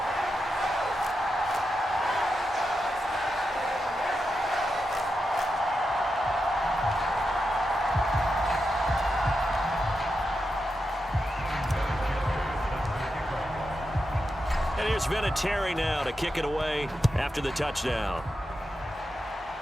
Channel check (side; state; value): both; normal; correlation 0.88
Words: And here's Vinatieri now to kick it away after the touchdown.